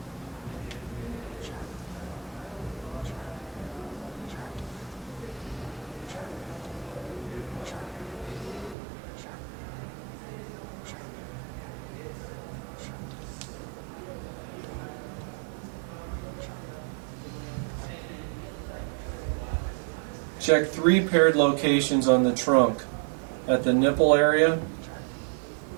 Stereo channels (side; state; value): left; drops out; at 8.8 s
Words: Check 3 paired locations on the trunk at the nipple area,